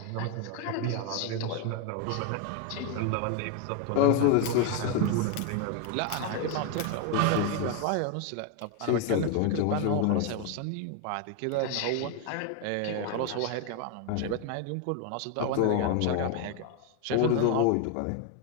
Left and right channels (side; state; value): both; different; correlation 0.01